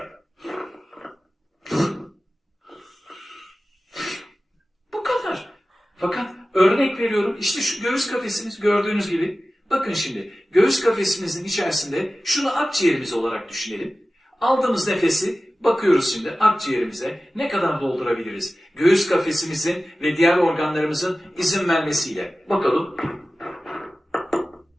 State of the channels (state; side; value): normal; both; correlation 0.96